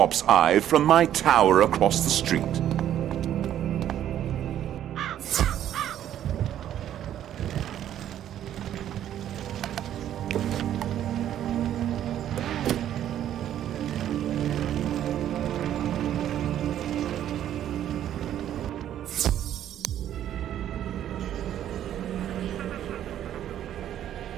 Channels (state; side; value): quieter; left; 11.1 dB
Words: Eye from my tower across the street.